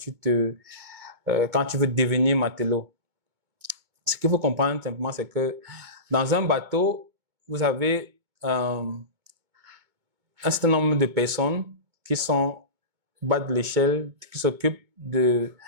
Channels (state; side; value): late; left; 2.2 ms